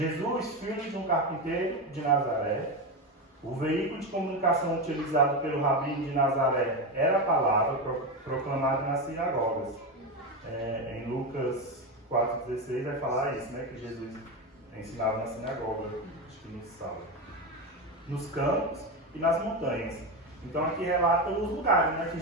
filho de um carpinteiro de Nazaré, o veículo de comunicação utilizado pelo rabino de Nazaré era a palavra proclamada nas sinagogas. Em Lucas 4,16 vai falar isso, né? Que Jesus ensinava na sinagoga, acho que no sábado. Nos campos e nas montanhas. Então aqui relata os lugares, né, que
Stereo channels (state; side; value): normal; both; correlation 0.15